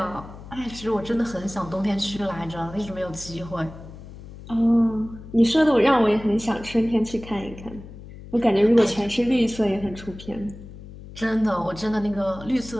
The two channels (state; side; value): noise; left; hum, 15 dB below the sound